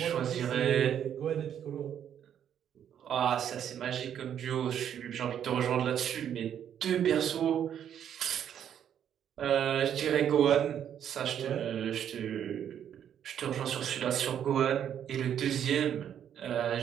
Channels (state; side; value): quieter; left; 9.4 dB